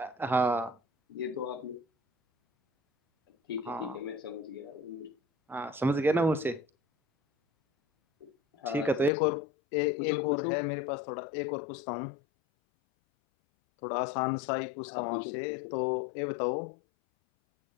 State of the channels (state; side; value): drops out; right; at 9.1 s